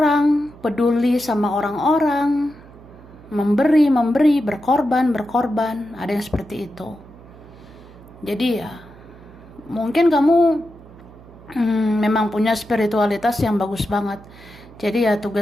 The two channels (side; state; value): right; noise; hum, 21 dB below the sound